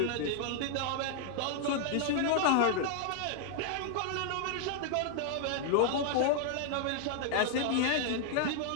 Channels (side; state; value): both; different; correlation 0.00